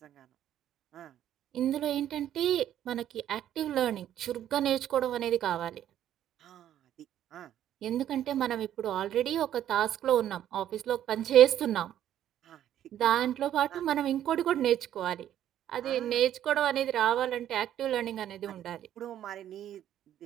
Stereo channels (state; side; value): quieter; left; 11.2 dB